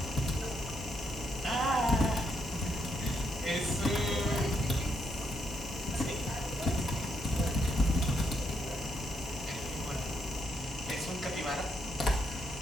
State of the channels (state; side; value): normal; both; correlation 0.77